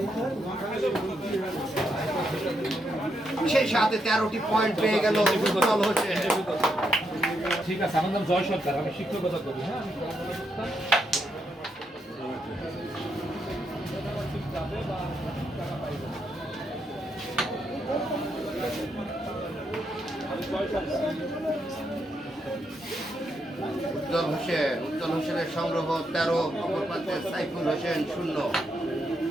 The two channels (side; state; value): both; normal; correlation 0.80